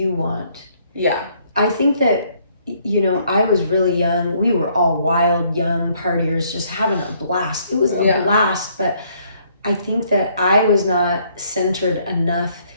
want. Yeah. I think that, you know, I was really young. We were all wild, young partiers, just having a blast. It was a blast, but I think that I was not centered enough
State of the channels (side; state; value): both; inverted; correlation -0.66